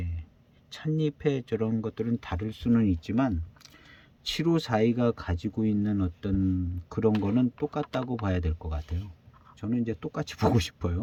찻잎의 저런 것들은 다를 수는 있지만 7542가 가지고 있는 어떤 그런 거는 똑같다고 봐야 될 것 같아요. 저는 이제 똑같이 보고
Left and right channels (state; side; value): identical; both; correlation 1.00